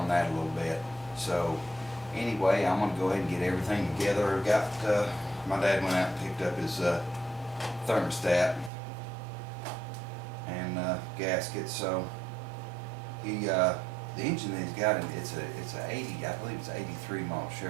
that a little bit. So anyway, I'm gonna go ahead and get everything together. My dad went out and picked up his thermostat and gasket. So the engine that he's got, it's a 80, I believe it's an 83 model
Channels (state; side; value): drops out; left; at 8.7 s